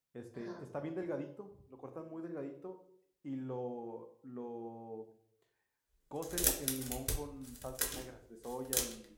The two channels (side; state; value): both; identical; correlation 1.00